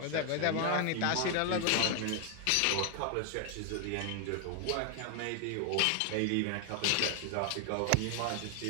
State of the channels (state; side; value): different; both; correlation 0.00